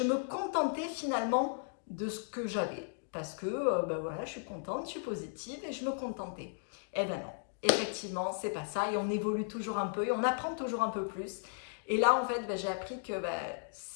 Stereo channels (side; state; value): right; silent; digital silence